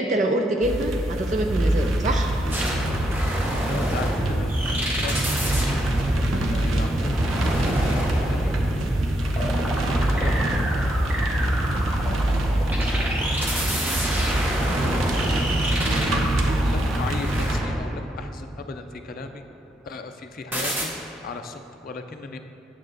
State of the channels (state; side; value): normal; both; correlation 0.79